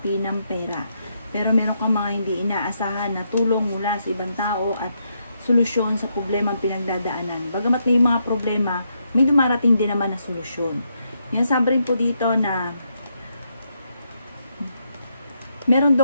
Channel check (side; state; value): both; inverted; correlation -0.79